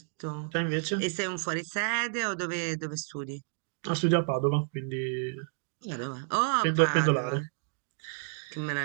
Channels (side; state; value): left; silent; digital silence